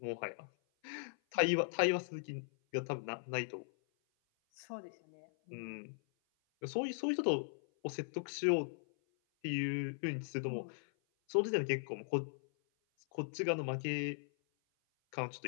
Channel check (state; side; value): silent; right; 52 dB below the other